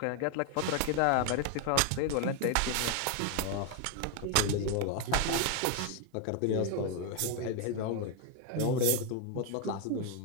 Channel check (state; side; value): different; both; correlation 0.01